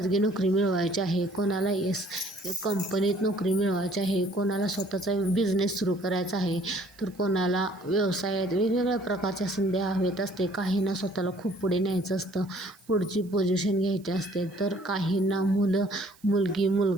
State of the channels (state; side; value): noise; right; hiss, 28 dB below the sound